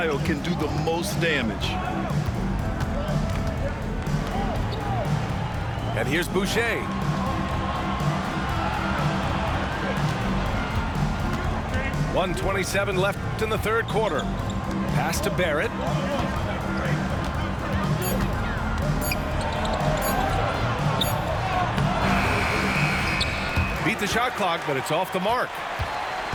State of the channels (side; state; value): both; identical; correlation 1.00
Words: can do the most damage. And here's Boucher. .127 left in the third quarter. Pass to Barrett. beat the shot clock, but it's off the mark.